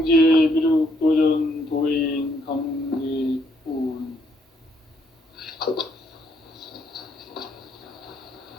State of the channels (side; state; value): both; normal; correlation 0.72